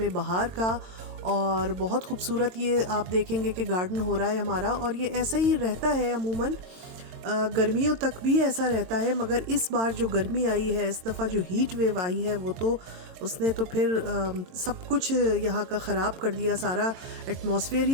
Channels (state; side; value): late; left; 22 ms